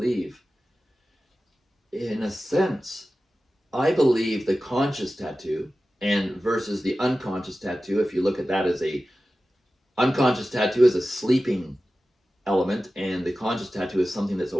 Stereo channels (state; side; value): normal; both; correlation 0.95